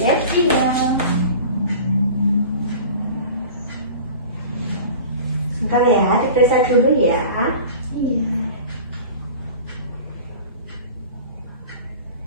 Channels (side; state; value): both; inverted; correlation -0.39